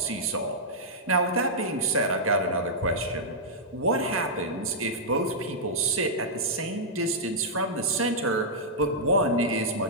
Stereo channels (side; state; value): both; normal; correlation -0.10